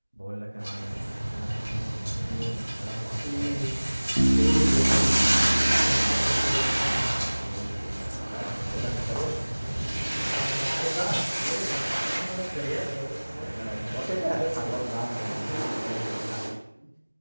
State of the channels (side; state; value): both; inverted; correlation -1.00